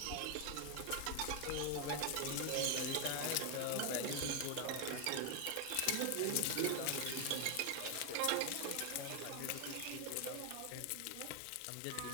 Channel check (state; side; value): different; both; correlation 0.01